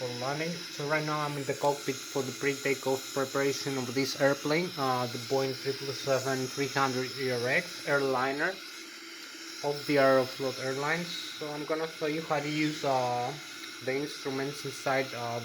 landing. So right now I'm in the cockpit for the pre-takeoff preparation of this airplane, the Boeing 777-300 ERX airliner of the Aeroflot Airlines. So I'm gonna show you how to use the instruments inside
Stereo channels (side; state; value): both; identical; correlation 1.00